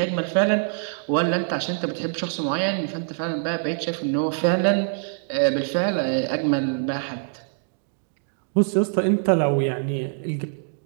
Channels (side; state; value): left; silent; digital silence